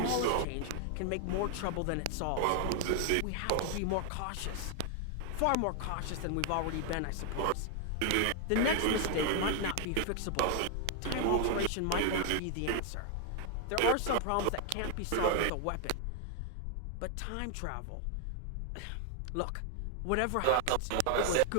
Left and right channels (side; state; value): both; different; correlation 0.00